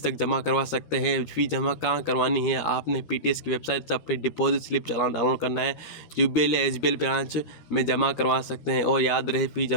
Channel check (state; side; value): late; right; 13 ms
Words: तक जमा करवा सकते हैं। फ़ी जमा कहाँ करवानी है? आपने पीटीएस की वेबसाइट से अपनी डिपॉजिट स्लिप चालान डाउनलोड करना है। यूबीएल या एसबीएल ब्रांच में जमा करवा सकते हैं। और याद रहे, फ़ी